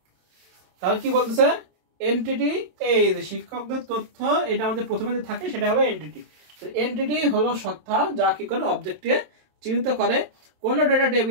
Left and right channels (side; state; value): left; late; 27 ms